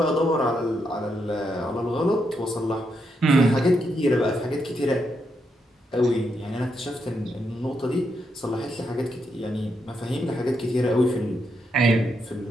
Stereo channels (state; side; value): normal; both; correlation 0.80